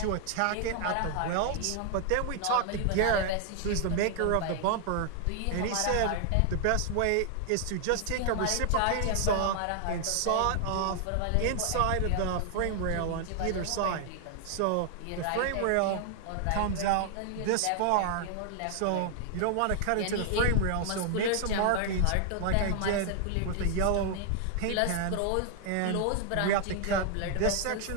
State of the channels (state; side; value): different; both; correlation 0.00